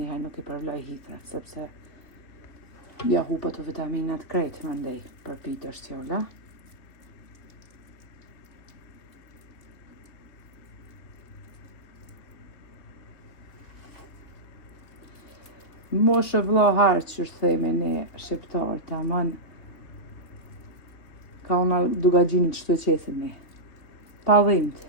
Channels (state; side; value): late; right; 3.2 ms